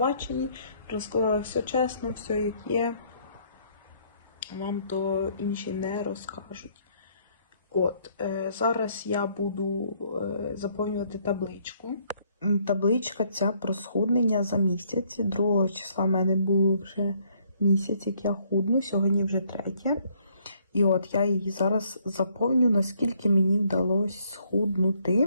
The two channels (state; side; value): inverted; both; correlation -0.67